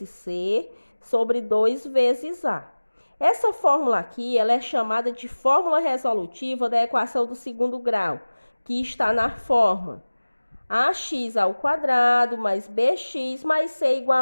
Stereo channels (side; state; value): both; inverted; correlation -1.00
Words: c sobre 2 vezes a. Essa fórmula aqui ela é chamada de fórmula resolutiva da equação do segundo grau, que está na forma ax ao quadrado mais bx mais c